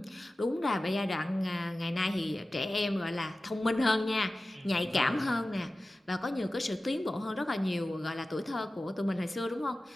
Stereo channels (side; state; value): both; normal; correlation 0.96